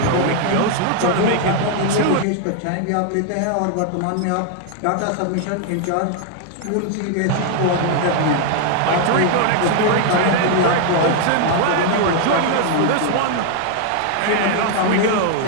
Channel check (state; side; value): different; both; correlation 0.00